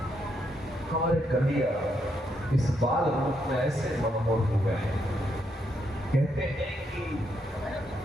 हमारे कन्हैया इस बाल रूप में ऐसे मनमोहक हो गए हैं। कहते हैं कि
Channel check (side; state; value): both; normal; correlation 0.77